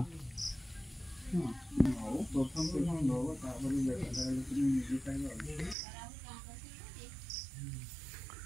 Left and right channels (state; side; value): drops out; left; at 5.8 s